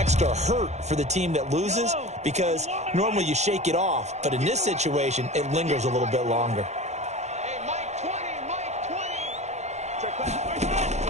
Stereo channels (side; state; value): left; late; 0.33 ms